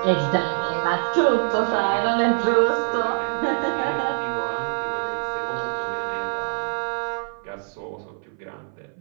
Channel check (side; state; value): left; silent; 57 dB below the other